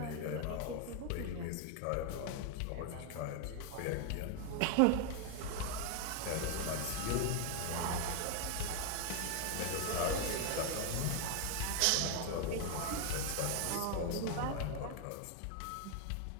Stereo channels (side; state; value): both; different; correlation 0.00